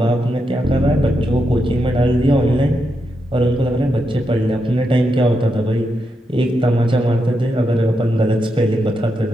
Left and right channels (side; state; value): both; normal; correlation 0.84